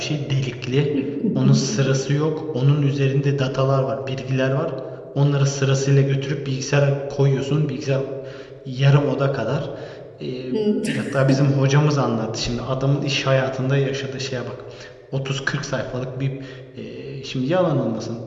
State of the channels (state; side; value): identical; both; correlation 1.00